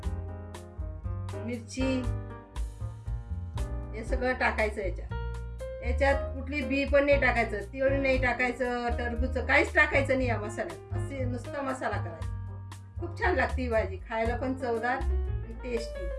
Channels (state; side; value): identical; both; correlation 1.00